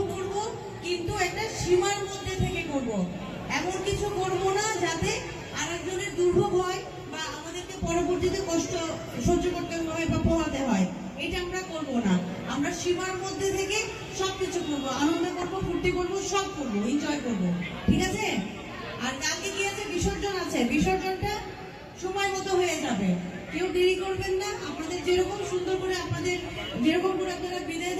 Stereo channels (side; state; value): both; identical; correlation 1.00